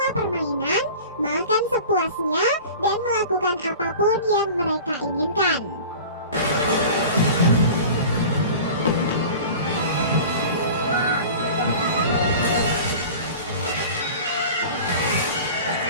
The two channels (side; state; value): both; inverted; correlation -0.38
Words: permainan, makan sepuasnya, dan melakukan apapun yang mereka inginkan.